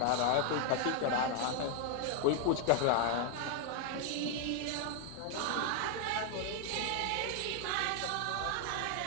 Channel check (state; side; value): different; both; correlation 0.00